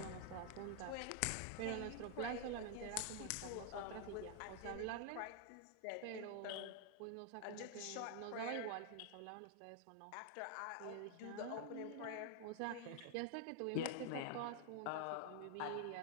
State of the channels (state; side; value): different; both; correlation 0.00